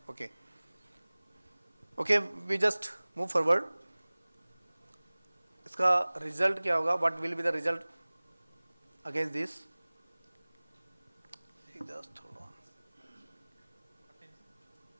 Okay. Okay, we just move forward. इसका result क्या होगा? What will be the result against this? Just hold on.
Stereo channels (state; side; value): inverted; both; correlation -1.00